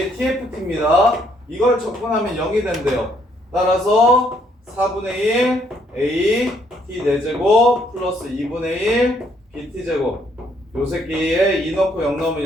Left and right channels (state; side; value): normal; both; correlation 0.69